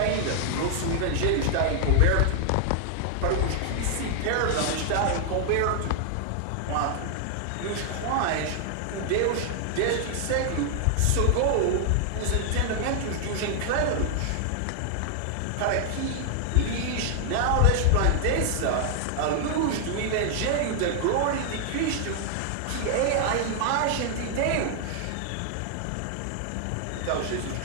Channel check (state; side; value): different; both; correlation 0.00